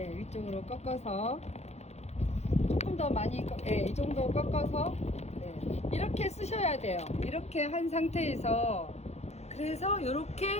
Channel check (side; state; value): right; late; 0.31 ms